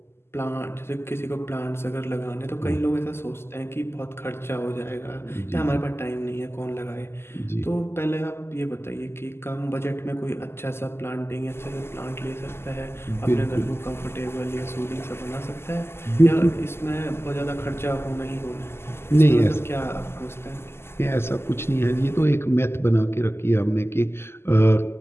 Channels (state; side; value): late; right; 0.12 ms